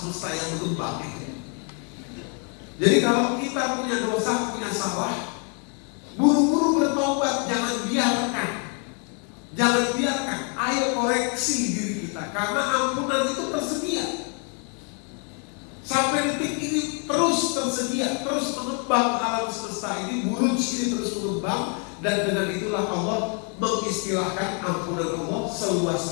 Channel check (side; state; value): right; quieter; 38.9 dB